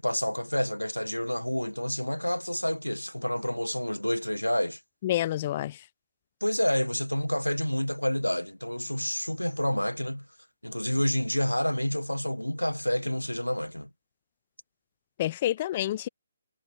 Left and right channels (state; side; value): inverted; both; correlation -0.93